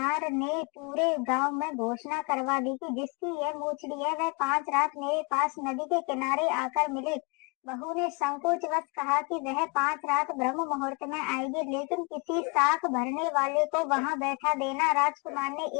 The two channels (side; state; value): right; quieter; 31.6 dB